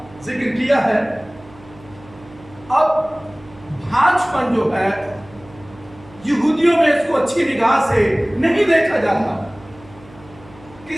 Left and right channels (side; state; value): right; noise; hum, 22 dB below the sound